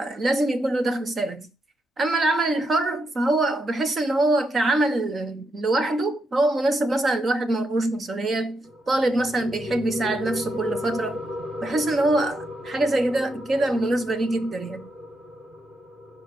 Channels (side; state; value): both; normal; correlation 0.82